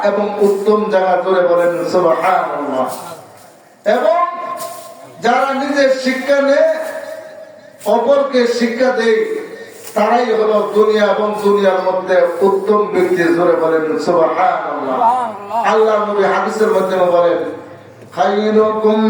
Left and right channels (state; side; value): identical; both; correlation 1.00